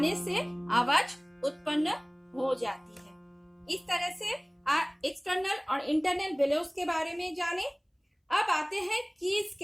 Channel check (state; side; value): identical; both; correlation 1.00